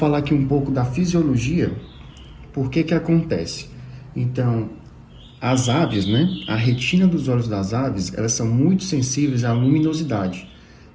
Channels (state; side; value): identical; both; correlation 1.00